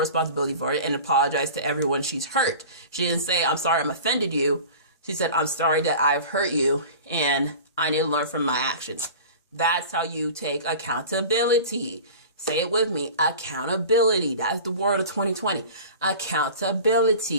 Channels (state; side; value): inverted; both; correlation -0.38